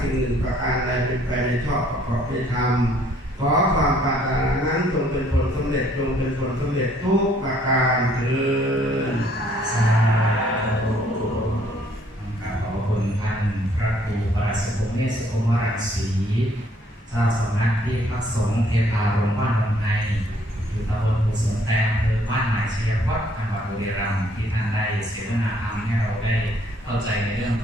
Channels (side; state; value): both; normal; correlation 0.63